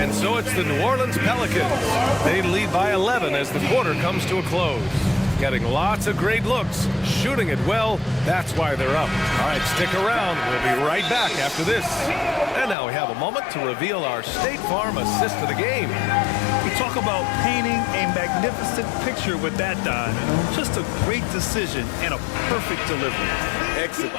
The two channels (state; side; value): drops out; right; at 12.8 s